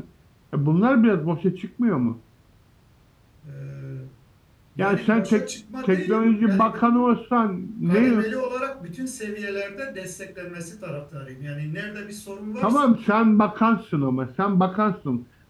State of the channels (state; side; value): identical; both; correlation 1.00